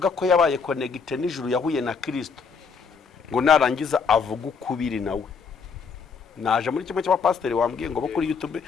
ko yabaye connected n'ijuru yahuye na Kristo ngo narangiza avuga ukubiri nawe. Naje muri kimwe cy'abapasiteri wambwiye ngo bo kuri YouTube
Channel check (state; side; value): quieter; right; 5.5 dB